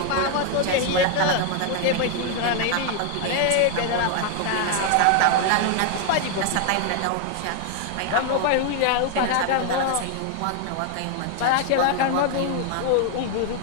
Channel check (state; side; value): different; both; correlation 0.00